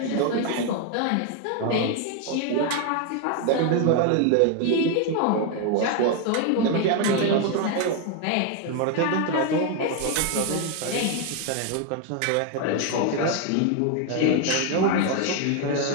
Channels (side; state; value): both; different; correlation 0.01